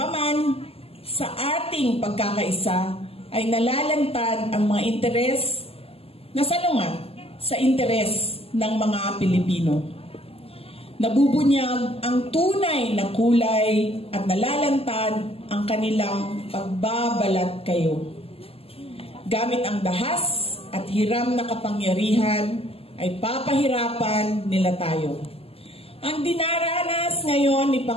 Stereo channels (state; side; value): late; right; 0.28 ms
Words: sa ating pagkakaisa ay nalalantad ang mga interes na salungat sa interes ng mga Pilipino. Nabubunyag ang tunay na kulay at nalalantad ang kanilang pagbabalat kayo. Gamit ang dahas at hiram na kapangyarihan ay papahirapan nila tayo. Ang dinaranas ngayon ni